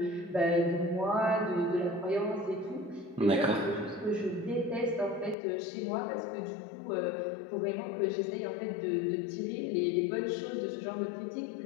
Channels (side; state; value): right; drops out; at 5.4 s